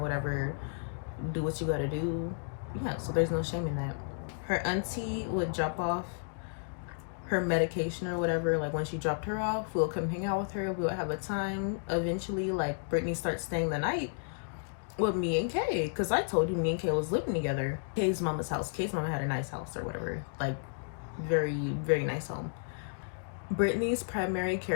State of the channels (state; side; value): silent; right; digital silence